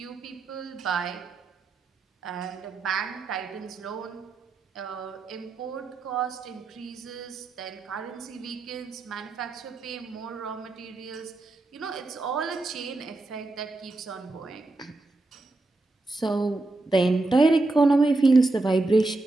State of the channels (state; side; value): quieter; left; 3.1 dB